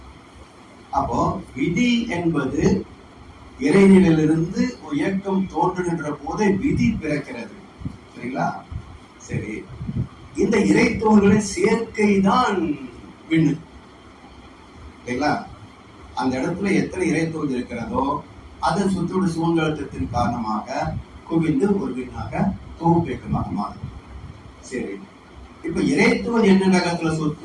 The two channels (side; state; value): both; identical; correlation 1.00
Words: அப்போ விதி என்பது இறைநிலையிலிருந்து ஒரு இயக்கம் தோன்றுகின்ற போதே விதி பிறக்கிறது. சரிங்களா? சரி, இந்த இறைத்தோள்களின் சேர்க்கை தான் விண்ணு. சரிங்களா? அந்த இடத்துல எத்தனை இறைத்தோள் இருக்கிறதோ அதன் சுற்றோடு சூழ்நிலத்தின் காரணமாக குவிந்து ஒரு விண்ணாக தொகுப்பேக்கமாக மாறும். சரி, இப்ப இறைத்துவல் என்ன வேகத்துல